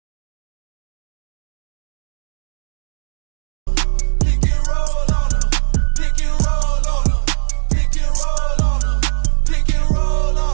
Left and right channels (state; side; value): silent; left; digital silence